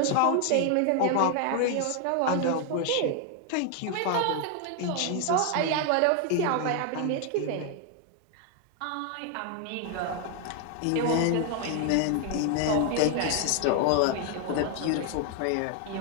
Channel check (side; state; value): both; different; correlation 0.00